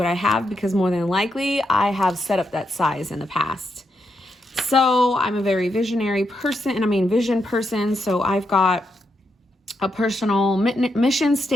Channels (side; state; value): both; normal; correlation 0.82